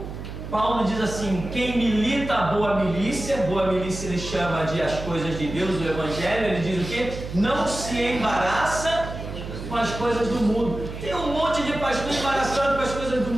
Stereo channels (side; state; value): right; noise; hum, 9 dB below the sound